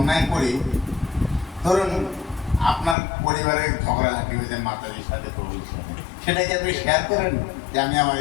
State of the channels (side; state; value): right; drops out; at 3.0 s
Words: করি, ধরুন আপনার পরিবারে ঝগড়াঝাটি হয়েছে মাতাজির সাথে, প্রভুর সাথে, সেটাকে আপনি শেয়ার করেন যে আমি আমার